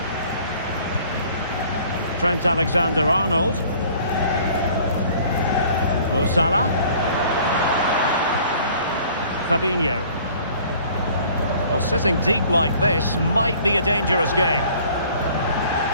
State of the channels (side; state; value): both; inverted; correlation -0.53